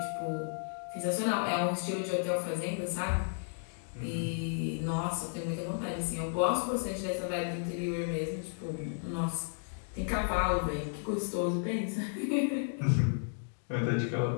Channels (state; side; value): silent; right; digital silence